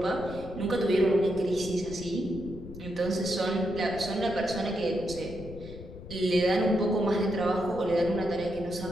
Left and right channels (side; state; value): left; noise; rumble, 14 dB below the sound